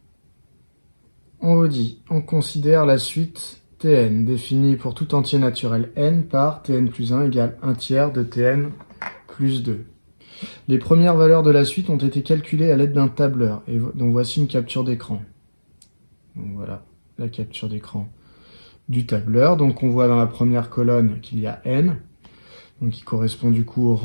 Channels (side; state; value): both; inverted; correlation -1.00